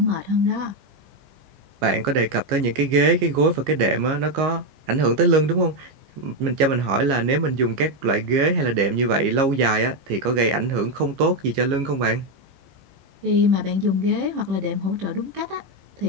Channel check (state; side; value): late; left; 15 ms